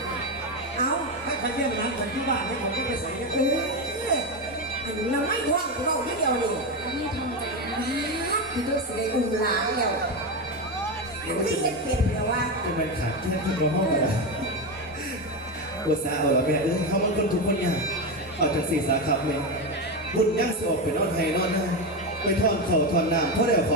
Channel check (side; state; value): both; normal; correlation 0.14